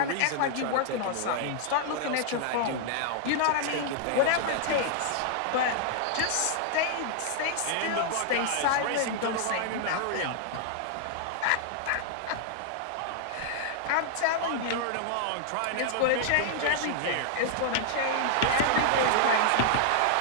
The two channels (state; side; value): different; both; correlation -0.01